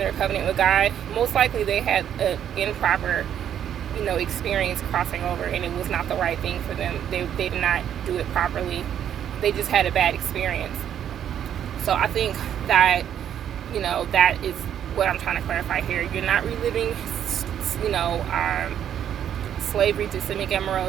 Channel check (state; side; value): quieter; left; 9.7 dB